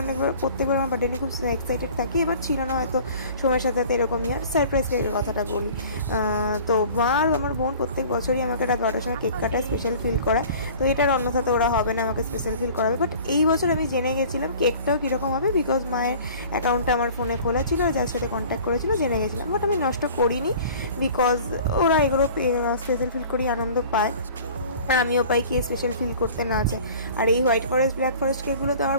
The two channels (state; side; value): inverted; both; correlation -0.46